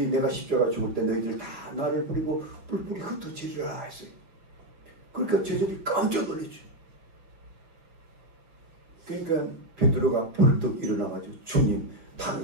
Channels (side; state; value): left; late; 5.5 ms